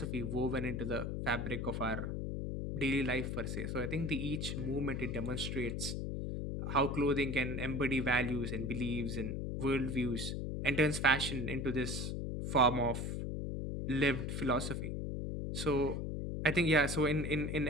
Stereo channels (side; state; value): left; noise; hum, 3 dB below the sound